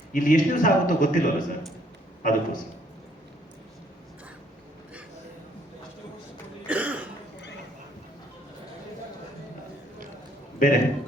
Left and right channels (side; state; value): both; normal; correlation 0.66